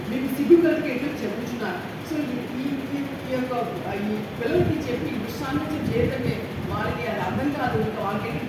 మీకు సిగ్గు కలిగి ఎట్లా చెప్పుచున్నారు. సో ఈ యొక్క ఈ పిల్లలకి చెప్పి దుస్సాంగత్యం చేయటమే వాళ్ళకి అది అర్థం కాదు. ఇంకా వాళ్ళకి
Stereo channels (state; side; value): identical; both; correlation 1.00